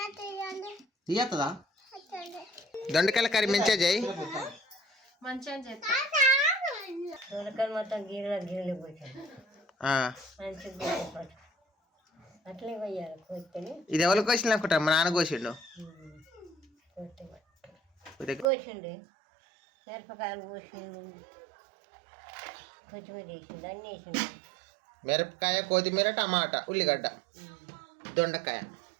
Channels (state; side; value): drops out; left; at 18.4 s